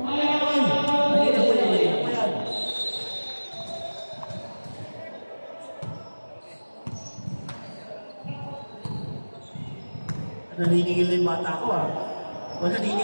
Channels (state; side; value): inverted; both; correlation -1.00